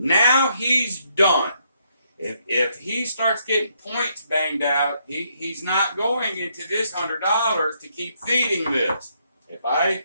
he's done. If he starts getting points banged out, he's not going into this $100 to keep feeding this. If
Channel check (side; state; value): both; inverted; correlation -0.74